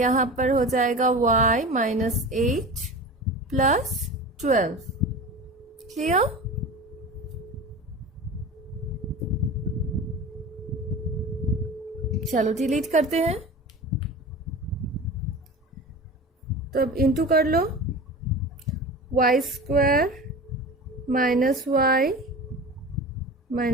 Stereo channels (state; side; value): normal; both; correlation 0.33